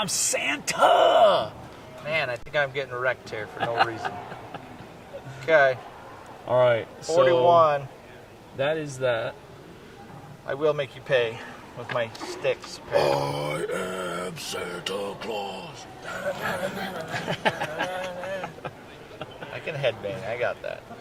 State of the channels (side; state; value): both; identical; correlation 1.00